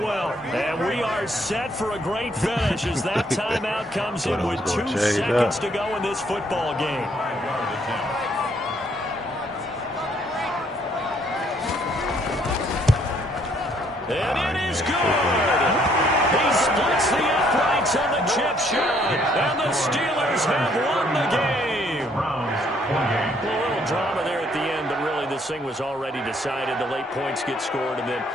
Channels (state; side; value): normal; both; correlation 0.67